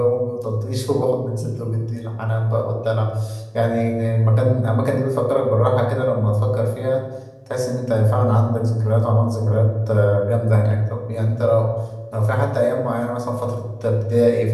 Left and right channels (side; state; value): both; identical; correlation 1.00